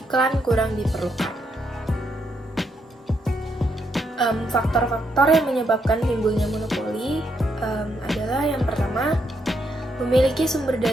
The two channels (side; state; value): both; normal; correlation 0.77